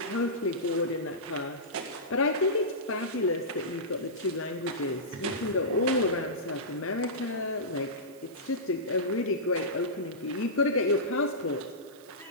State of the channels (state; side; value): noise; right; hiss, 25 dB below the sound